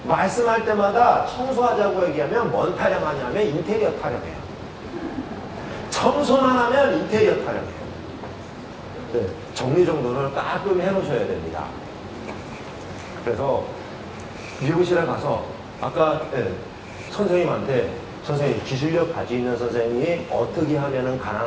말씀할 때마다 청소하자고 얘기하면 뭔 타령하냐면 인테리어 타령해요. 청소만 하면 인테리어 타령해요. 네, 정리정돈을 깔끔히 해놓으셔야 됩니다. 그래서 미용실에 가서 아까 선생님한테 선생님 기술력 가지고 있는 선생님이 어떻게 하면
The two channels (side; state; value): both; identical; correlation 1.00